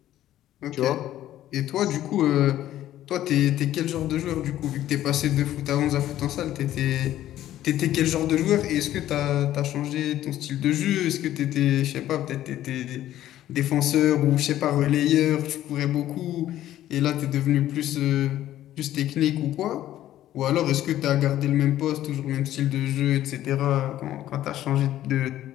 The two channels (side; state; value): right; quieter; 13.0 dB